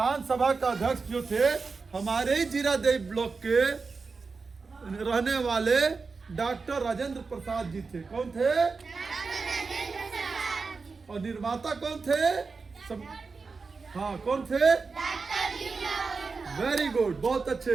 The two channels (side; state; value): left; quieter; 4.5 dB